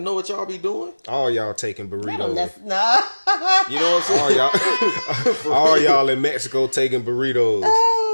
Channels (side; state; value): both; inverted; correlation -1.00